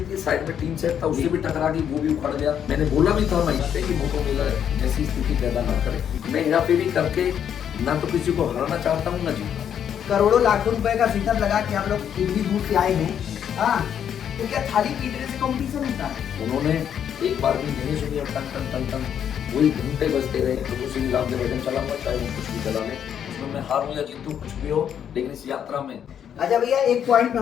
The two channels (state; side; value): quieter; right; 8.9 dB